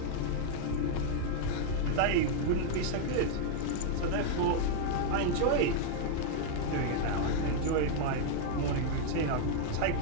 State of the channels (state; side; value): different; both; correlation 0.00